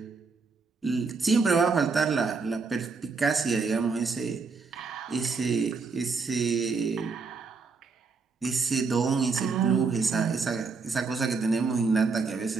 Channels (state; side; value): quieter; left; 4.7 dB